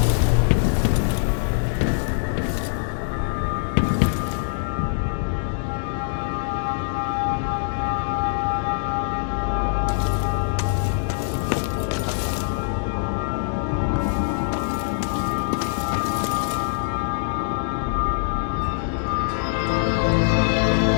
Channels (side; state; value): right; silent; 63 dB below the other